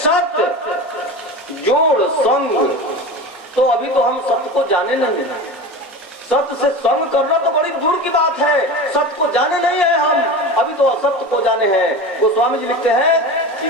जोड़ संग। तो अभी तो हम सत्य को जाने नहीं है। सत्य से संग करना तो बड़ी दूर की बात है। सत्य को जाने नहीं है हम, अभी तो असत्य को जाने हैं। गोस्वामी जी लिखते हैं कि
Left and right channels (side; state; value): both; normal; correlation 0.29